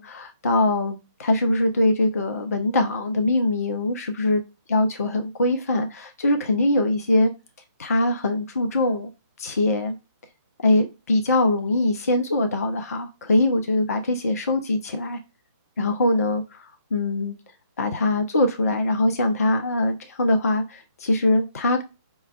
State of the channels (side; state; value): both; inverted; correlation -0.73